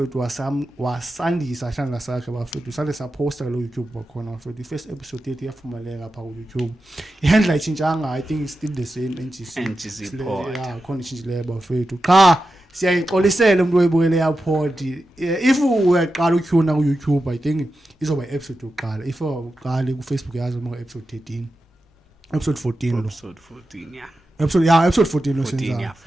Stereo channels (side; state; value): both; normal; correlation 0.91